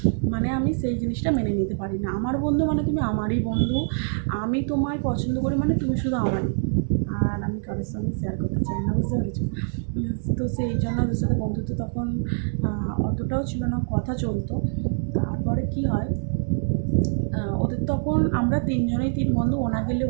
মানে আমি সেই জিনিসটা মেনে নিতে পারি না। আমার বন্ধু মানে তুমি আমারই বন্ধু, আমি তোমায় পছন্দ করি মানে তুমি শুধু আমারই, আর আমি কারোর সঙ্গে শেয়ার করতে চাই না, বুঝতে পেরেছি? তো সেই জন্য ওদের সাথে বন্ধুত্ব তখন অতটাও ছিল না, কথা চলতো। তারপরে কি হয়, ওদের তখন আমরা 3 জনেই 3 বন্ধু, ওনা গেলে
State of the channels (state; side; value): silent; left; digital silence